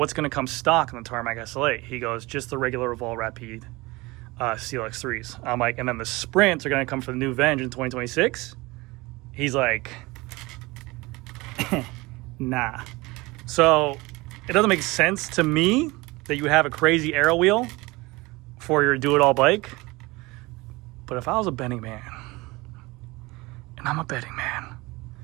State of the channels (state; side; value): quieter; left; 22.6 dB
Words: going to come stock in the Tarmac SLA? He goes, just the regular Roval Rapide CLX 3s. I'm like, and then the Sprints are going to come for the new Venge in 2026? He's like, nah. So it doesn't make sense to me that you have a crazy aero wheel for your do-it-all bike. But if I was a betting man, and I'm a betting man,